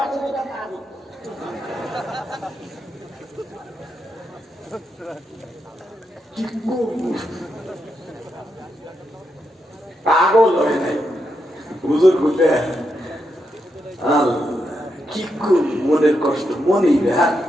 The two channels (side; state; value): both; normal; correlation 0.83